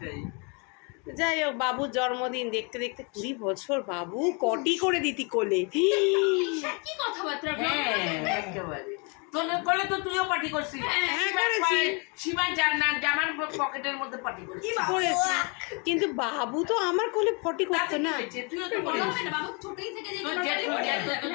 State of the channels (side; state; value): right; quieter; 33.4 dB